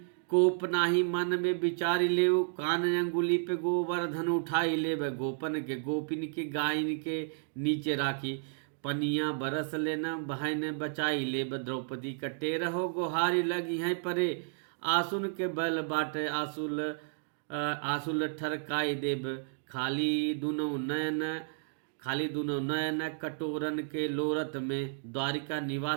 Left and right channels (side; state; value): left; silent; digital silence